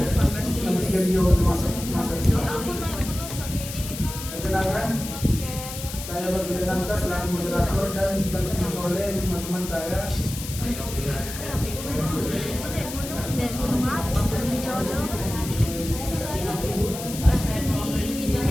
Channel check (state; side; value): noise; left; hiss, 9 dB below the sound